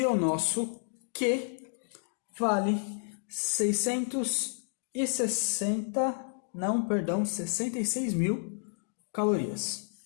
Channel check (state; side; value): silent; right; digital silence